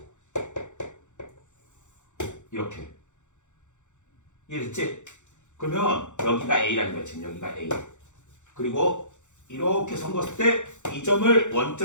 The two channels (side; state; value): right; late; 0.85 ms